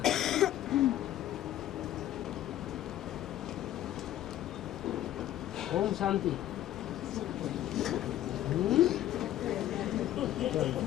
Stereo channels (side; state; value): right; quieter; 12.9 dB